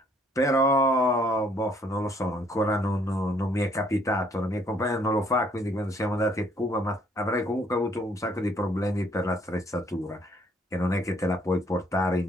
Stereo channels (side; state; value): both; normal; correlation 0.65